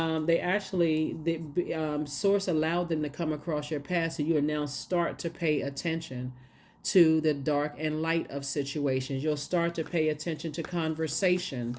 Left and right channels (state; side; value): identical; both; correlation 1.00